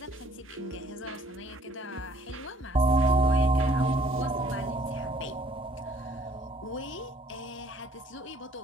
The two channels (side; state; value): both; normal; correlation 0.60